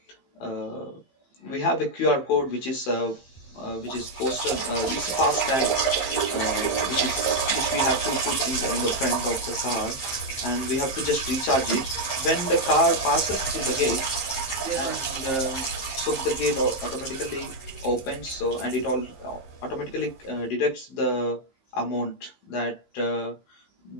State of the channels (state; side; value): late; right; 15 ms